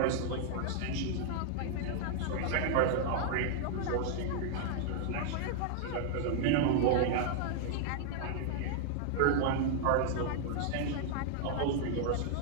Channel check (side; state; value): both; different; correlation -0.01